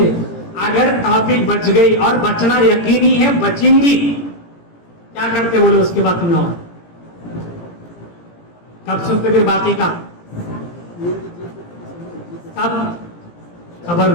اگر ٹاپک بچ گئی، اور بچنا یقینی ہے، بچیں گی، کیا کرتے بولے اس کے بعد تم لوگ؟ کب سنتے پھر باقی کا؟ کب؟ خبر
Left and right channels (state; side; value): late; right; 17 ms